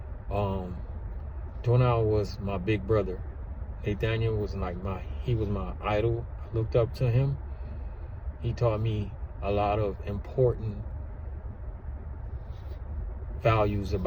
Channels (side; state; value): both; identical; correlation 1.00